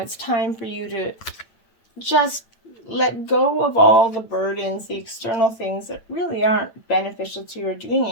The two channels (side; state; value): right; late; 9.0 ms